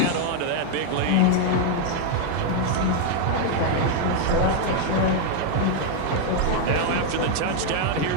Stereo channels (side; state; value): both; different; correlation 0.01